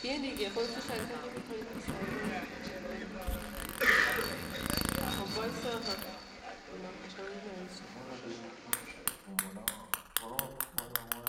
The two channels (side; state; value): both; identical; correlation 1.00